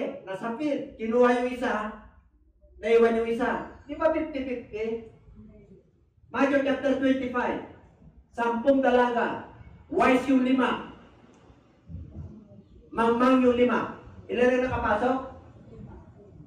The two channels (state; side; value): identical; both; correlation 1.00